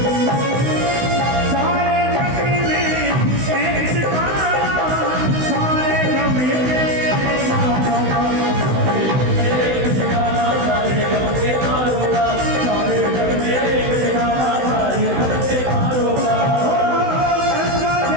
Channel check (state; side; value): late; left; 16 ms